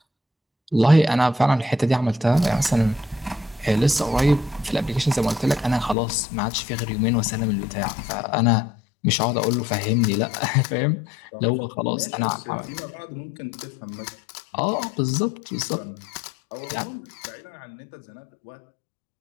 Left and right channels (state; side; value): drops out; right; at 6.0 s